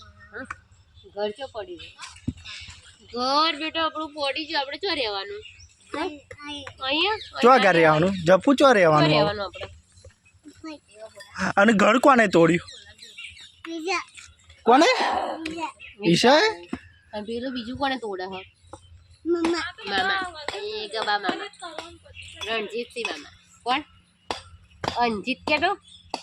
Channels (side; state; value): both; identical; correlation 1.00